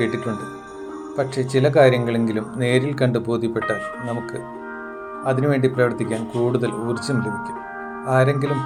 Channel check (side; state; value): both; identical; correlation 1.00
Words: പക്ഷേ ചില കാര്യങ്ങളെങ്കിലും നേരിൽ കണ്ട് ബോധ്യപ്പെട്ടാൽ നമുക്ക് അതിനുവേണ്ടി പ്രവർത്തിക്കാൻ കൂടുതൽ ഊർജം ലഭിക്കും. ആരെങ്കിലും